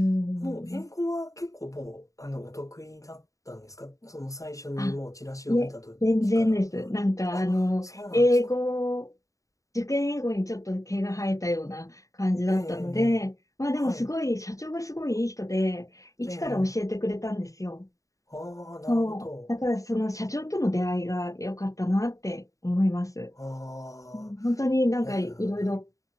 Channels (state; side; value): late; right; 0.16 ms